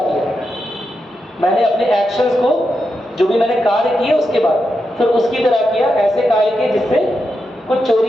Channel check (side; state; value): both; normal; correlation 0.86